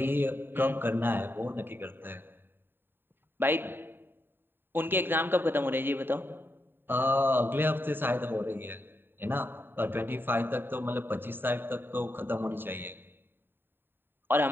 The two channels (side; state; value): left; late; 0.098 ms